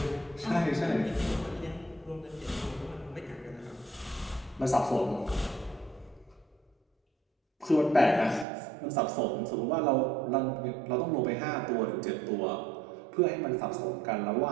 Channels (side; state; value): left; drops out; at 8.5 s